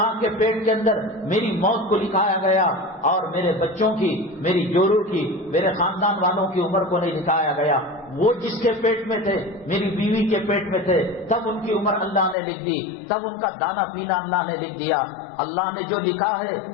کے پیٹ کے اندر میری موت کو لکھایا گیا، اور میرے بچوں کی، میری جوروں کی، میرے خاندان والوں کی عمر کو نہیں لکھایا گیا۔ وہ جس کے پیٹ میں تھے، میری بیوی کے پیٹ میں تھے، تب ان کی عمر اللہ نے لکھ دی، تب ان کا دانا پینا اللہ نے لکھ دیا۔ اللہ نے جو لکھا ہے،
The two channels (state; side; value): drops out; right; at 12.4 s